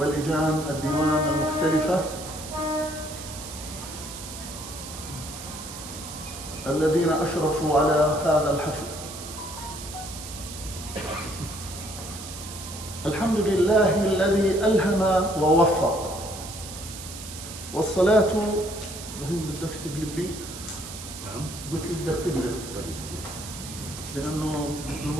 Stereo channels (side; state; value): right; noise; hiss, 11 dB below the sound